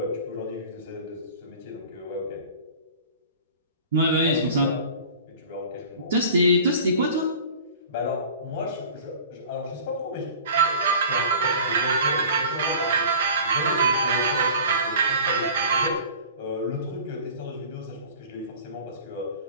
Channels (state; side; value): inverted; both; correlation -0.42